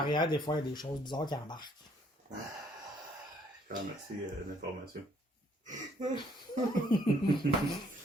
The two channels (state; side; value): normal; both; correlation 0.65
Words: des fois, il y a des choses bizarres qui embarquent. Ah, merci de l'information.